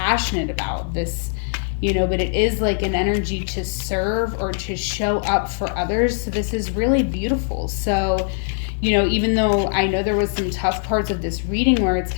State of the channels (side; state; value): right; silent; digital silence